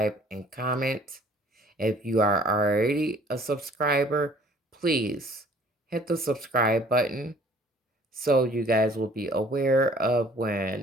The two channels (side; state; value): both; normal; correlation 0.55